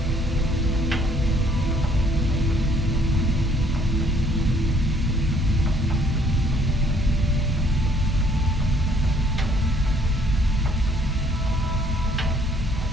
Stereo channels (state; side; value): normal; both; correlation 0.62